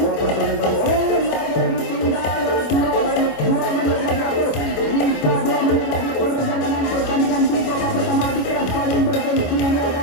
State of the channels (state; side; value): late; right; 25 ms